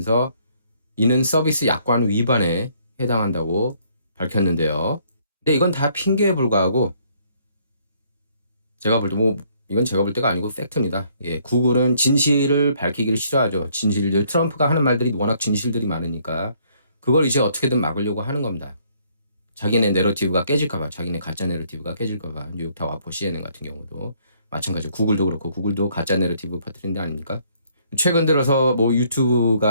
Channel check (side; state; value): both; inverted; correlation -0.66